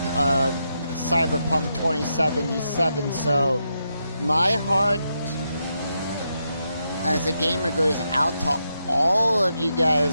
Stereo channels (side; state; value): both; inverted; correlation -0.84